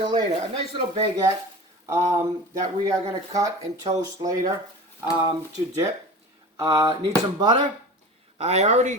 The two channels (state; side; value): normal; both; correlation 0.34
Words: later. A nice little baguette that we are going to cut and toast later to dip. Need some butter. I already